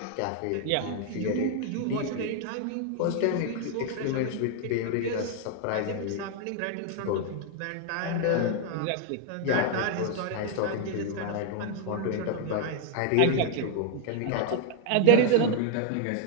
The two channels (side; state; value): both; different; correlation 0.00